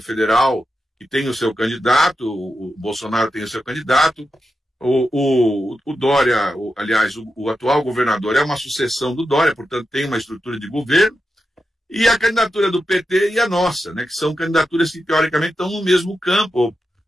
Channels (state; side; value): normal; both; correlation 0.88